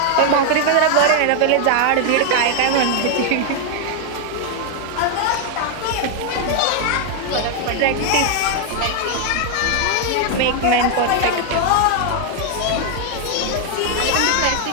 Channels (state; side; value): different; both; correlation 0.00